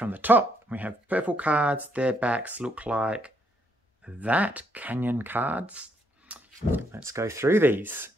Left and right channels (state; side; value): normal; both; correlation 0.73